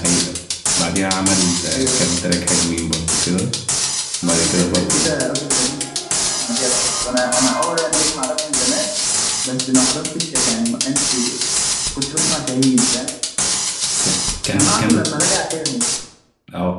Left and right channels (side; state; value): both; identical; correlation 1.00